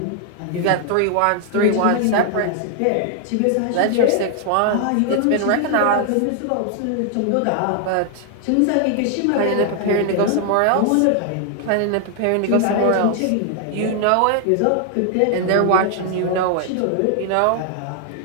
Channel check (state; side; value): different; both; correlation 0.00